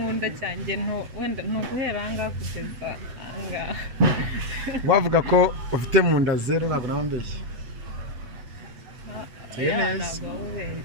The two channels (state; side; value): late; left; 8.0 ms